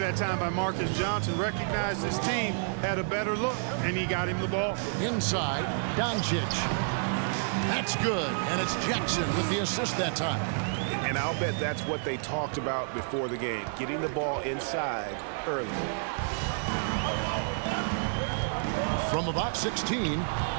time by Marcus Johnson. Recognized his team had a better look, and he got him the ball. Inside, Doncici. That's good, and it's Jackson with the assist that time. And I'll bet that's what they talked about before the game, getting the ball inside early. From about 16,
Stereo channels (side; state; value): left; silent; 58 dB below the other